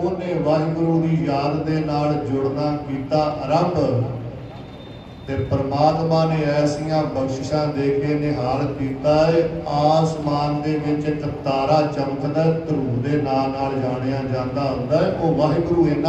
ਵਾਹਿਗੁਰੂ ਦੀ ਯਾਦ ਦੇ ਨਾਲ ਜੁੜਨਾ ਕੀਤਾ ਆਰੰਭ। ਤੇ ਪਰਮਾਤਮਾ ਨੇ ਐਸੀਆਂ ਬਖਸ਼ਿਸ਼ਾਂ ਦੇ ਕੇ ਨਿਹਾਲ ਕੀਤਾ ਹੈ। ਆਸਮਾਨ ਦੇ ਵਿੱਚ ਇੱਕ ਤਾਰਾ ਚਮਕਦਾ, ਧਰੂ ਦੇ ਨਾਂ ਨਾਲ ਜਾਣਿਆ ਜਾਂਦਾ ਹੁੰਦਾ ਹੈ। ਉਹ ਵਾਹਿਗੁਰੂ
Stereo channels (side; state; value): both; identical; correlation 1.00